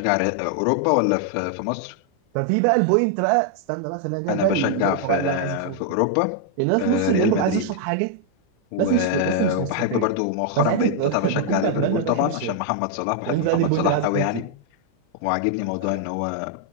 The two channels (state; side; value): different; both; correlation 0.00